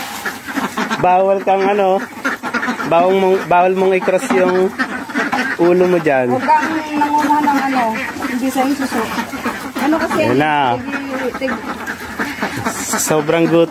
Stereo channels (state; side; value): identical; both; correlation 1.00